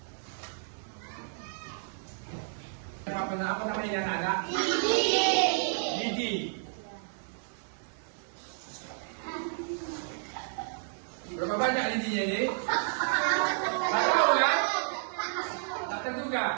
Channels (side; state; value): left; silent; 57 dB below the other